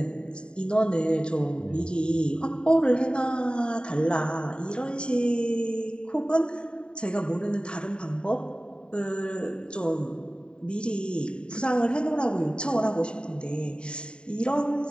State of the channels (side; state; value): right; late; 0.051 ms